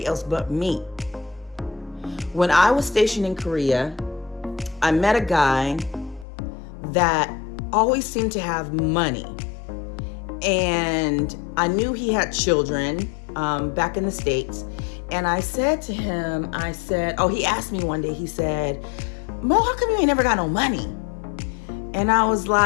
else but me. When I was stationed in Korea, I met a guy that always seemed to have money. And I knew he had children back in the States. And I said to him, he asked me one day, he said, Mo, how come you ain't never got no money? And I was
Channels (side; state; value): right; drops out; at 6.2 s